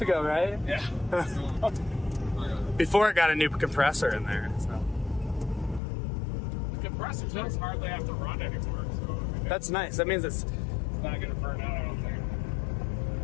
ago, right? Yeah. Before it got a new compressor in there. So. The compressor does hardly have to run anymore, so I mean, That's nice. That means it's not going to burn out, I don't think.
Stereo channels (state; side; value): drops out; right; at 5.8 s